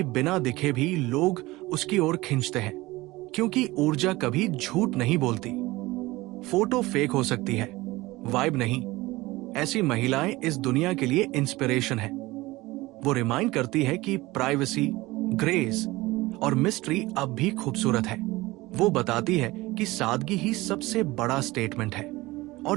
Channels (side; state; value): left; quieter; 20.1 dB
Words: बिना दिखे भी लोग उसकी ओर खींचते हैं, क्योंकि ऊर्जा कभी झूठ नहीं बोलती। फोटो फेक हो सकती है, वाइब नहीं। ऐसी महिलाएं इस दुनिया के लिए इंस्पिरेशन है। वो रिमाइंड करती है कि प्राइवेसी, ग्रेस और मिस्ट्री अब भी खूबसूरत है। वो बताती है कि सादगी ही सबसे बड़ा स्टेटमेंट है,